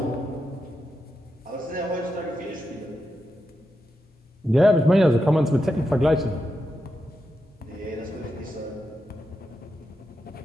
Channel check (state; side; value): normal; both; correlation 0.86